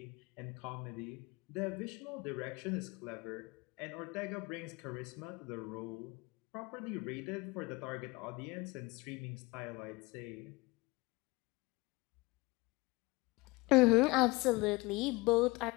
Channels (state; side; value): quieter; right; 23.5 dB